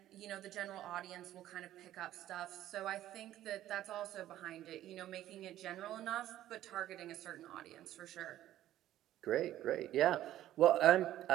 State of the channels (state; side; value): quieter; left; 13.2 dB